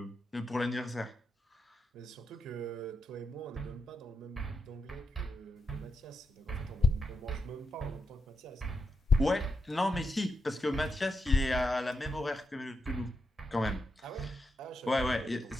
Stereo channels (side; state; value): both; normal; correlation 0.83